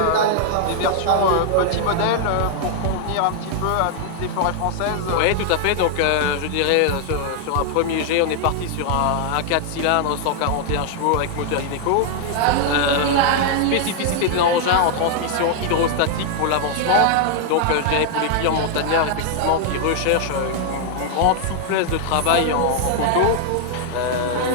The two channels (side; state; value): both; different; correlation 0.00